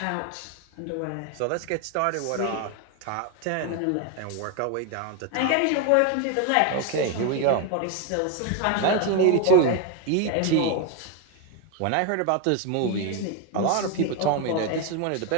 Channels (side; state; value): both; different; correlation 0.02